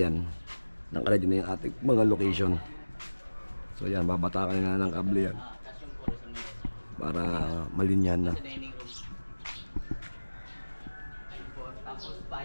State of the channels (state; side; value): inverted; both; correlation -1.00